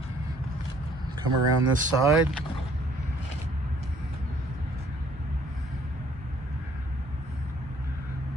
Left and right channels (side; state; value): both; normal; correlation 0.60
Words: Come around this side.